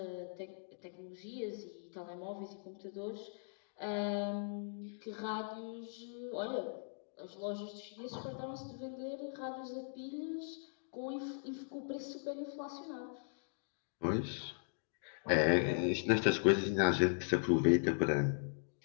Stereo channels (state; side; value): silent; right; digital silence